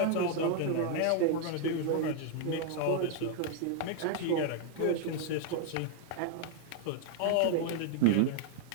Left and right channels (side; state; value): both; different; correlation 0.00